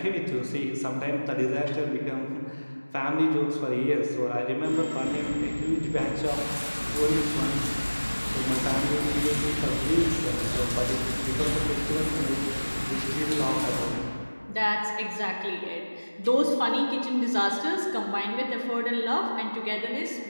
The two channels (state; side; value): inverted; both; correlation -1.00